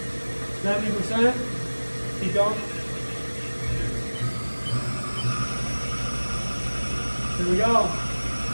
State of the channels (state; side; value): inverted; both; correlation -1.00